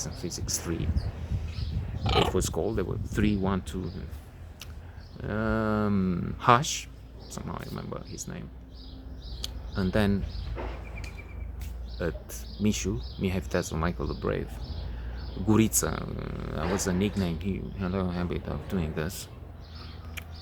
and physics 3, it was called. There were 3, 1, 2, Hush, somehow I remember his name. And then at Mishu, Mihai Viteazul, Michael the Brave, Gurița, that was a nickname. He had a habit of doing this.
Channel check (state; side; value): identical; both; correlation 1.00